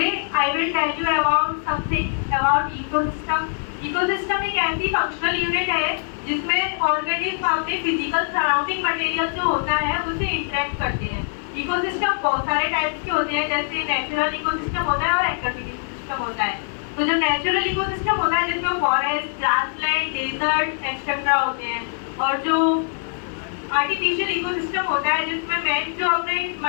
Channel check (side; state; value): right; silent; digital silence